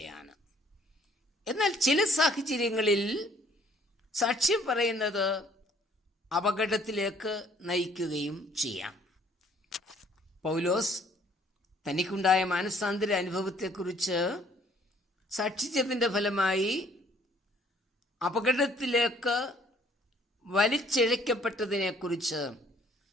എന്നാൽ ചില സാഹചര്യങ്ങളിൽ സാക്ഷ്യം പറയുന്നത് അപകടത്തിലേക്ക് നയിക്കുകയും ചെയ്യാം. പൗലോസ് തനിക്കുണ്ടായ മാനസാന്തര അനുഭവത്തെക്കുറിച്ച് സാക്ഷിച്ചതിൻ്റെ ഫലമായി അപകടത്തിലേക്ക് വലിച്ചിഴക്കപ്പെട്ടതിനെക്കുറിച്ച്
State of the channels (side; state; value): both; normal; correlation 0.60